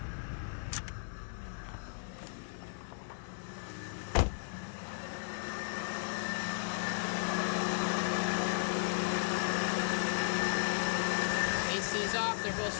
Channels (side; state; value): right; silent; digital silence